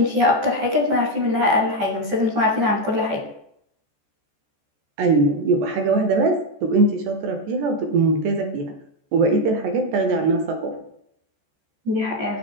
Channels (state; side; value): late; left; 14 ms